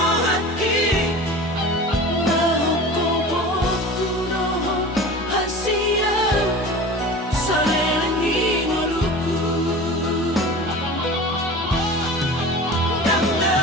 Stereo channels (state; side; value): normal; both; correlation 0.36